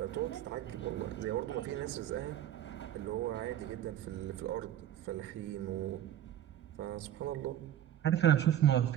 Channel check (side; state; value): left; quieter; 11.3 dB